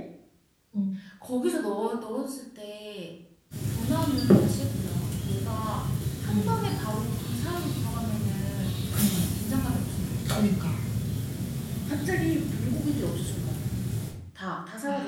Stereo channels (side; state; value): both; identical; correlation 1.00